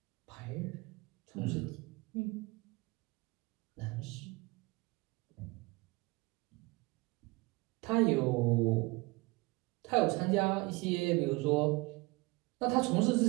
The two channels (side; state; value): left; quieter; 24.4 dB